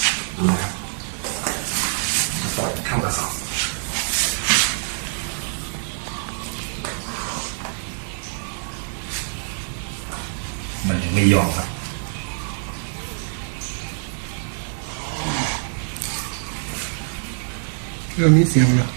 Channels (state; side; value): silent; left; 62 dB below the other